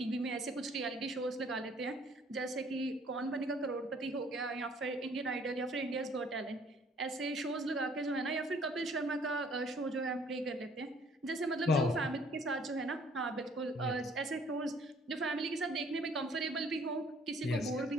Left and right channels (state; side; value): normal; both; correlation 0.59